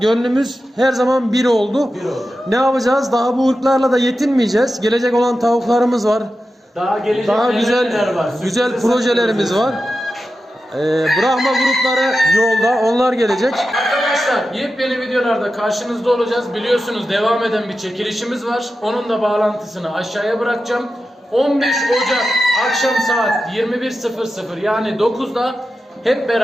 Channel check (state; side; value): normal; both; correlation 0.92